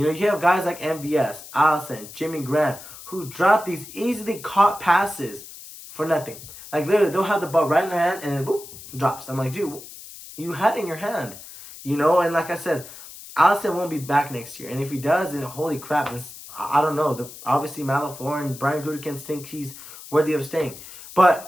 know, you have guys like MVS, Allison, Jimmy Graham, who drop these easily caught passes for nothing. Like, literally, they'll have the ball right in their hand and then, boop, drops. I'm like, dude, you had it in your hand. You know, and like I said, Allison won't be back next year. And if he does, then holy crap, I don't know. Obviously, Matt LaFleur and Brian Gutekunst think he's worthy of staying.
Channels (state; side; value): noise; left; hiss, 15 dB below the sound